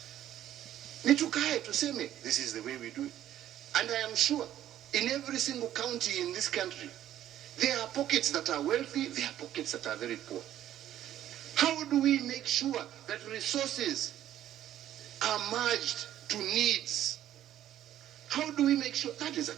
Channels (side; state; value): left; quieter; 12.0 dB